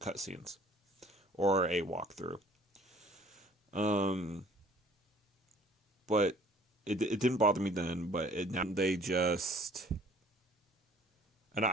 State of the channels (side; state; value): both; normal; correlation 0.54